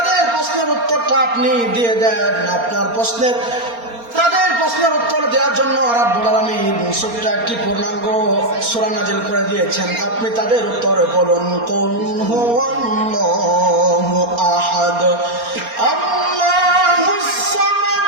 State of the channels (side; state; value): left; late; 4.3 ms